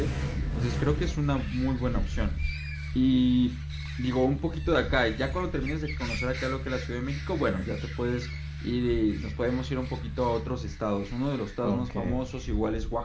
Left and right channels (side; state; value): both; identical; correlation 1.00